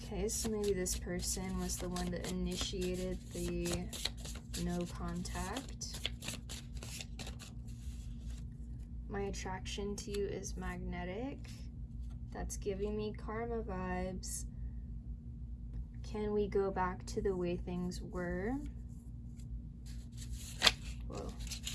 so maybe this person was the one that initiated the no contact. My attraction to you is magnetic. That's giving me karma vibes. Can we go back to the way things were? Whoa.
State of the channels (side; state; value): both; identical; correlation 1.00